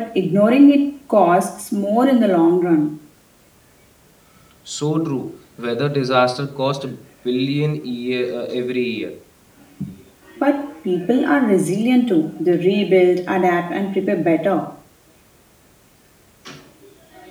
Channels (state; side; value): identical; both; correlation 1.00